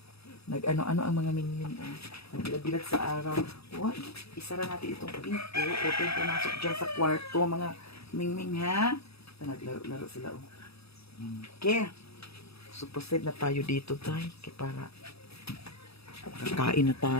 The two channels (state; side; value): late; right; 0.78 ms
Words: Nag-ano-ano ang mga Mingming, oh. Nagbilag-bilag sa araw. Oh, isara natin itong pinto. Huwag kayong pumasok dyan sa kwarto, mga Mingming, ha? Naglaro-laro sila, oh. Okay. So, proceed na tayo dito, tayo. Kaya para kakain na